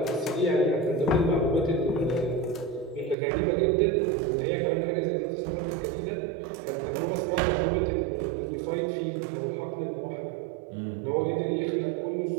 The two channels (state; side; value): drops out; left; at 3.2 s